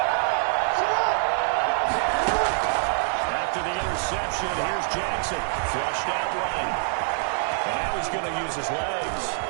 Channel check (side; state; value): left; silent; 61 dB below the other